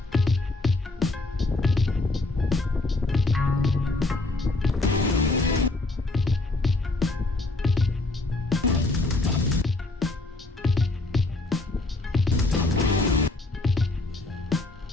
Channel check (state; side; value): quieter; right; 3.0 dB